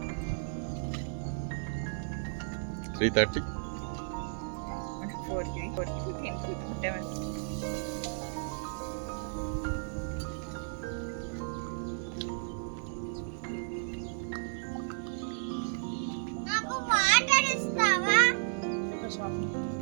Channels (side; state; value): left; silent; digital silence